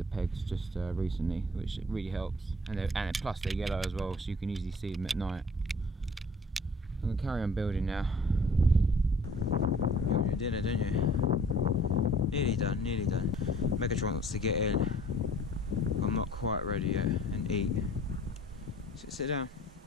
pegs just recently, which really helps. And plus they're yellow as well, so you can easily see them at night. I'm going to carry on building now. You want your dinner, don't you? Nearly done, nearly done. Megatron wants to get in. I'm not quite ready yet and eat. Sit down.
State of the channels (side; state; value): both; normal; correlation 0.53